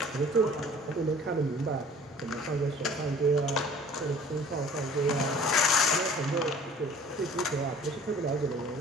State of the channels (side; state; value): both; normal; correlation 0.49